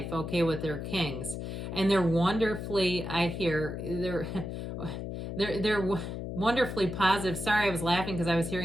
okay, with their kings. And they're wonderfully, I hear, they're wonderfully positive. Sorry, I was laughing because I was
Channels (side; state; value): left; noise; hum, 6 dB below the sound